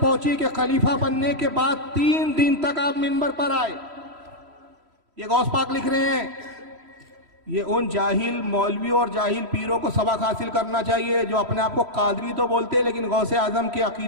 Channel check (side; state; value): left; late; 3.1 ms